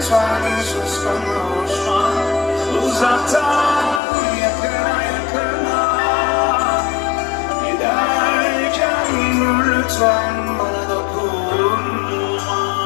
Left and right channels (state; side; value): drops out; right; at 4.0 s